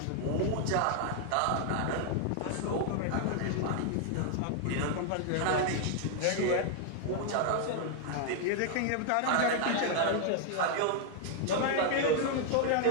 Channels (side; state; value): both; different; correlation 0.00